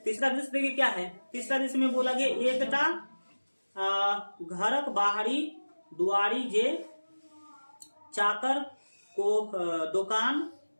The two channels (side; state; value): both; inverted; correlation -1.00